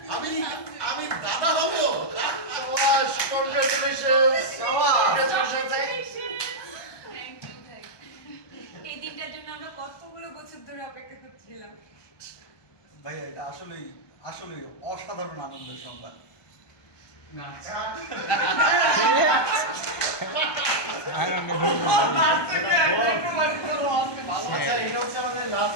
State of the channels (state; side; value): late; right; 1.2 ms